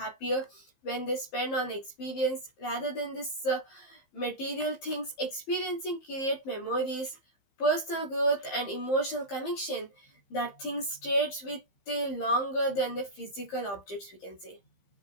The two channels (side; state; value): right; late; 15 ms